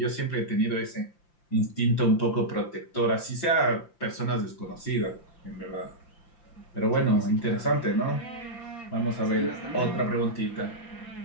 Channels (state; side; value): late; right; 5.8 ms